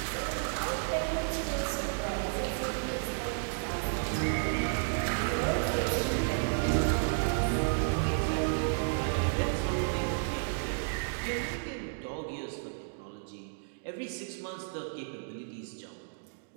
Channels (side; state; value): left; silent; digital silence